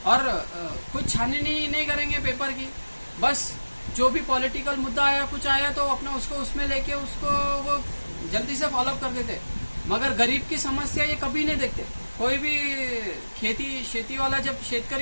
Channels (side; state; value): both; inverted; correlation -1.00